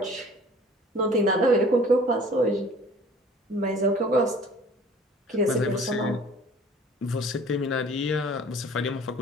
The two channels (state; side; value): normal; both; correlation 0.49